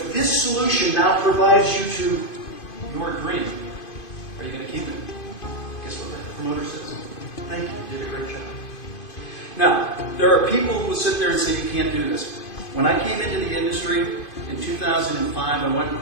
this solution now provides you to your dream, are you going to keep it? Guess what the promoter says? Thank you, you did a great job. Now, there are people who will sit there and say you can't do this. When I came into the industry in 2005, I went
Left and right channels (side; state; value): right; late; 2.5 ms